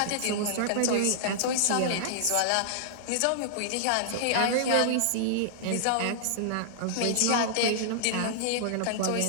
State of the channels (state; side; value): different; both; correlation -0.01